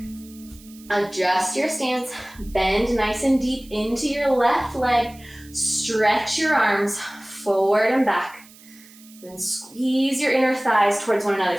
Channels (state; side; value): noise; right; hiss, 23 dB below the sound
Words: Adjust your stance, bend nice and deep into your left leg. Stretch your arms forward and back. Then squeeze your inner thighs towards one another